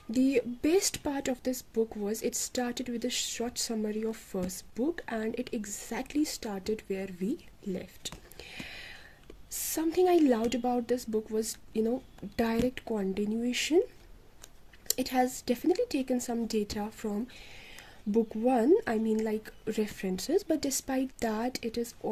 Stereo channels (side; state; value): both; identical; correlation 1.00